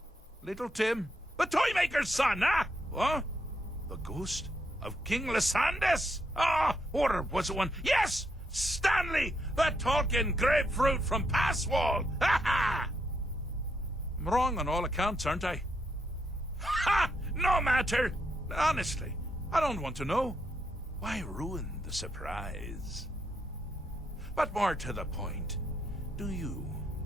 Little Tim. The Toymaker's son, What? The ghost of King Lysandas? Or was it one? Yes! Stanley, the talking grapefruit from Passwall. I'm wrong on all accounts, aren't I? No matter. Honestly, I don't want to know. Why ruin the surprise? But more to the point, do you,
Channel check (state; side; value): normal; both; correlation 0.79